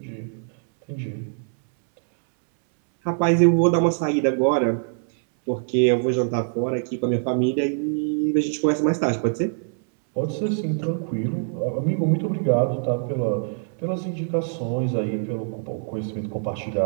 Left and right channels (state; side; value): silent; left; 63 dB below the other